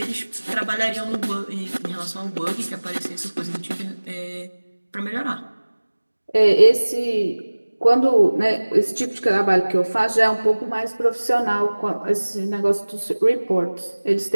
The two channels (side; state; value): both; inverted; correlation -1.00